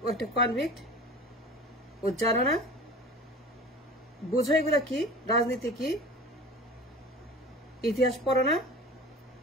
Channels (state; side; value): normal; both; correlation 0.38